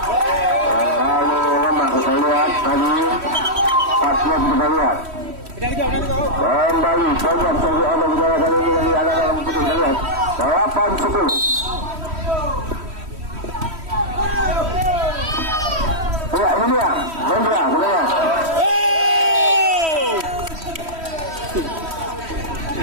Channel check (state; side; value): late; left; 3.1 ms